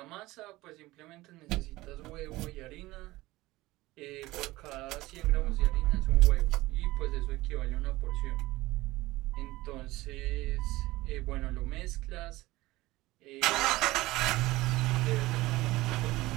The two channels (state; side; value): quieter; left; 18.9 dB